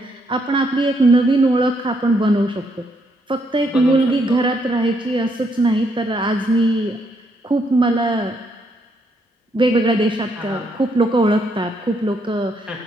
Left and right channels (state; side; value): normal; both; correlation 0.74